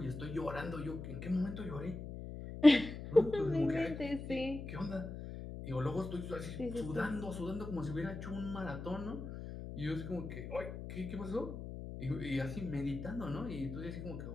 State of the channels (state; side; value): noise; left; hum, 8 dB below the sound